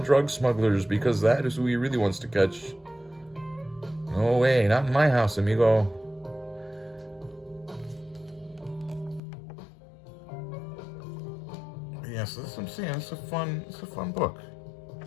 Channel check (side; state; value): right; drops out; at 9.2 s